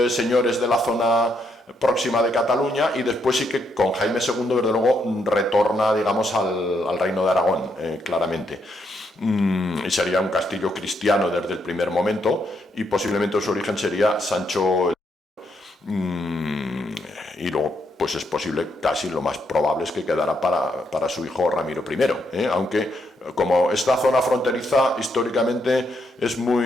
señores de la zona próxima de Cataluña, y después sí que con Jaime II, desde luego, retorna, digamos, al reino de Aragón, claramente. Y sería un castillo cristiano desde el primer momento, y posiblemente su origen sería Sancho. Y luego, pues es posible, casi lo más probable es que quedara para su hijo Ramiro I, aunque como esta zona fronteriza históricamente es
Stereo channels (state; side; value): normal; both; correlation 0.77